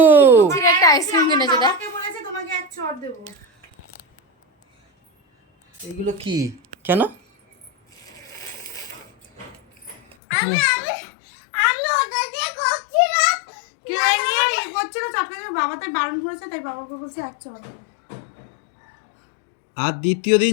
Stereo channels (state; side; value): drops out; right; at 10.2 s